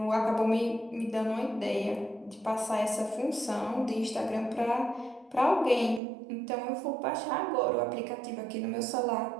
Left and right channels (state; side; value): drops out; left; at 6.0 s